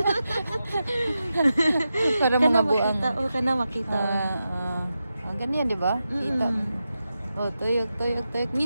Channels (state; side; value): inverted; both; correlation -0.90